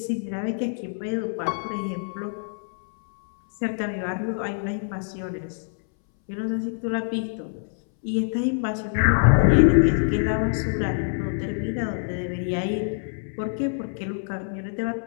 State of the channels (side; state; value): right; silent; 62 dB below the other